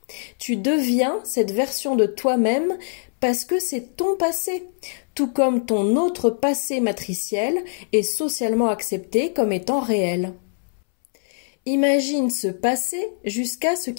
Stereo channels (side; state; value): right; silent; 64 dB below the other